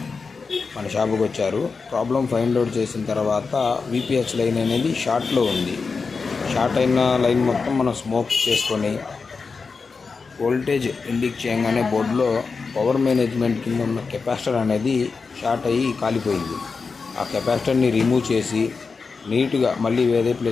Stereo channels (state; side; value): quieter; right; 4.7 dB